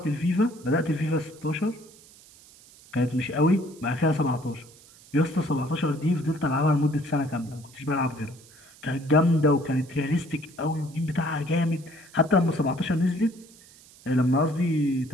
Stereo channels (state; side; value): noise; right; hiss, 24 dB below the sound